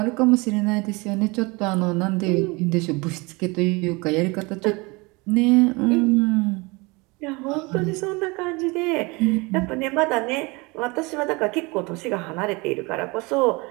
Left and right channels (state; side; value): quieter; left; 26.0 dB